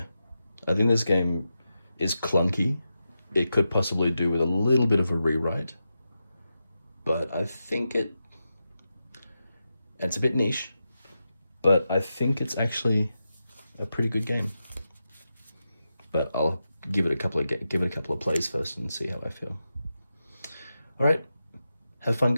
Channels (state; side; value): inverted; both; correlation -0.89